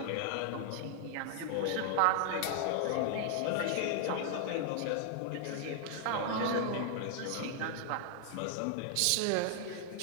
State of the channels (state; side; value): different; both; correlation 0.00